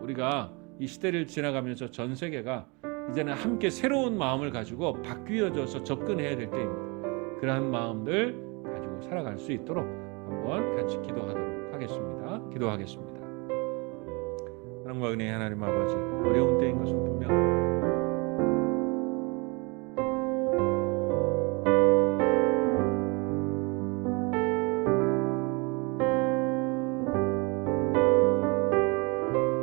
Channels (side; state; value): left; quieter; 29.3 dB